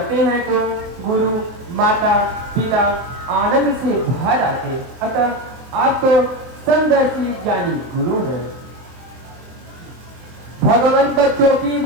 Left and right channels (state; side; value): late; left; 24 ms